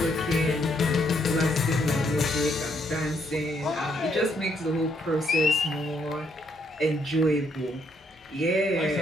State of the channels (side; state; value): both; normal; correlation 0.73